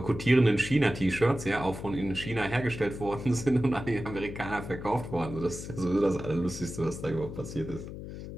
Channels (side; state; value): left; noise; hum, 10 dB below the sound